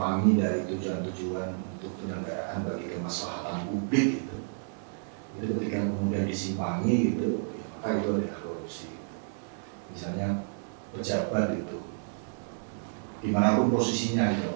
dari tujuan-tujuan untuk penyelenggaraan bagi kemaslahatan publik itu ketika kemudian disimpangi gitu, ya, maka itu adalah korupsi. Misalnya pejabat itu dimanapun posisinya gitu,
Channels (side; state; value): left; silent; digital silence